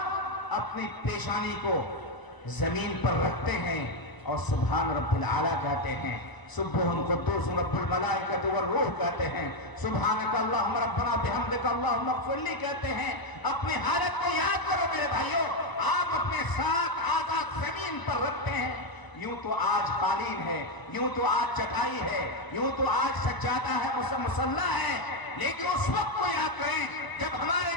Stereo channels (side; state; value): right; late; 1.0 ms